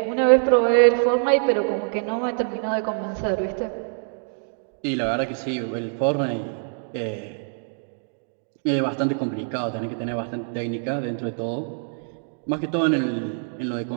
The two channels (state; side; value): silent; left; digital silence